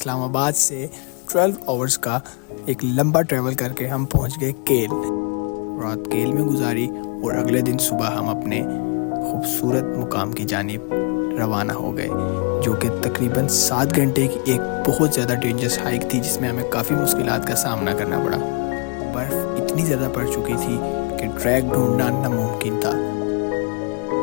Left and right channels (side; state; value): right; quieter; 34.0 dB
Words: से 12 आवर्स का एक लंबा ट्रैवल करके हम पहुँच गए केल। रात केल में गुजारी और अगले दिन सुबह हम अपने खूबसूरत मुकाम की जानिब रवाना हो गए, जो कि तकरीबन 7 घंटे की एक बहुत ज़्यादा डेंजरस हाइक थी, जिसमें हमें काफ़ी मुश्किलात का सामना करना पड़ा। बर्फ़ इतनी ज़्यादा पड़ चुकी थी कि ट्रैक ढूंढना नामुमकिन था।